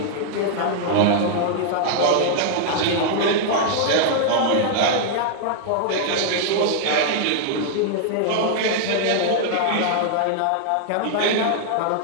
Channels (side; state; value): both; different; correlation -0.01